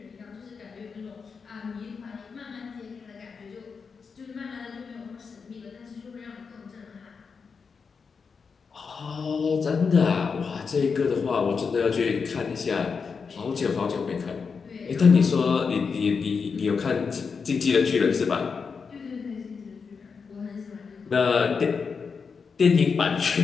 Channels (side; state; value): right; quieter; 5.5 dB